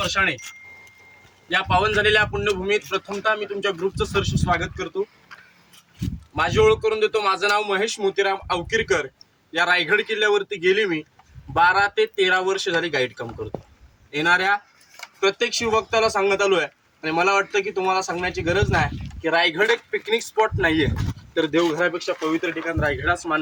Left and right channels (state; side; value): identical; both; correlation 1.00